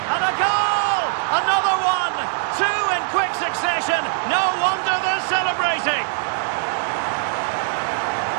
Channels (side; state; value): left; silent; digital silence